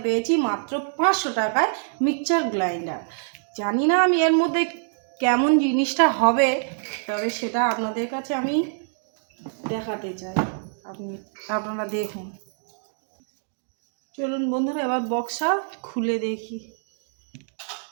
পেয়েছি মাত্র 500 টাকায় মিক্সচার গ্রাইন্ডার। জানি না আমি এর মধ্যে কেমন জিনিসটা হবে, তবে সেটা আপনাদের কাছে আমি দেখাতে চাই। আপনারা দেখুন। চলুন বন্ধুরা, এবার বক্সটা খুলে দেখি।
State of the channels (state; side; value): silent; left; digital silence